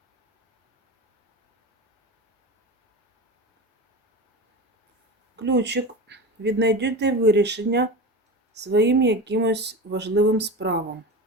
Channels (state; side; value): normal; both; correlation 0.27